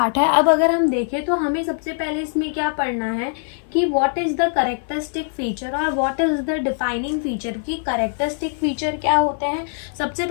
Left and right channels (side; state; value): right; silent; 58 dB below the other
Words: है, अब अगर हम देखें तो हमें सबसे पहले इसमें क्या पढ़ना है कि what is the characteristic feature और what is the defining feature. की कैरेक्टरिस्टिक फीचर क्या होते हैं। सबसे